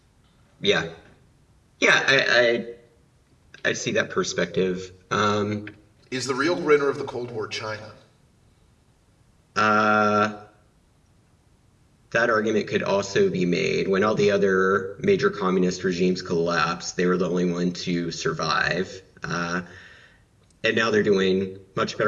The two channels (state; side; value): identical; both; correlation 1.00